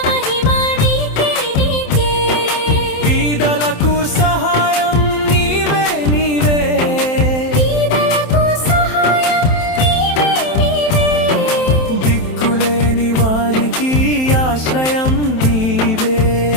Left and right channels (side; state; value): right; late; 27 ms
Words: మహిమ నీకే నీకే. బీదలకు సహాయం నీవే నీవే, బీదలకు సహాయం నీవే నీవే. దిక్కులేని వారికి ఆశ్రయం నీవే